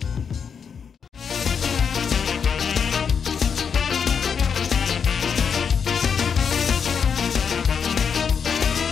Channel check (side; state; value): right; quieter; 6.7 dB